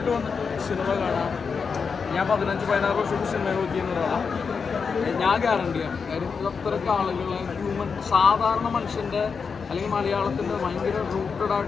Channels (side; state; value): right; quieter; 5.6 dB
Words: വന്നിട്ട് സിനിമ കാണാം. ഞാൻ 15-16 വർഷത്തെ സിനിമ നോക്കിയെന്നതാണ് ഞാൻ ഗ്യാരണ്ടിയാണ്. കാര്യം ഇത് അത്രയ്ക്ക് ആളുകളെ സാധാരണ മനുഷ്യൻ്റെ അല്ലെങ്കിൽ മലയാളത്തിൻ്റെ ഭയങ്കര റൂട്ടഡ്